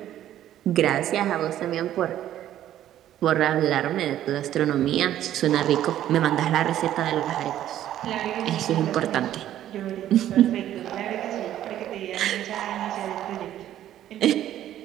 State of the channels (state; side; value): quieter; left; 12.1 dB